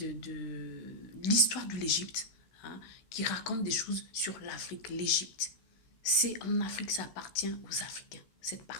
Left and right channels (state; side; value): late; right; 16 ms